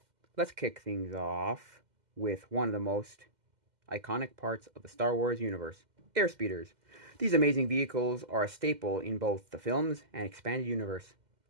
Let's kick things off with one of the most iconic parts of the Star Wars universe, airspeeders. These amazing vehicles are a staple in both the films and expanded universe.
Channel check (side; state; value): left; late; 2.1 ms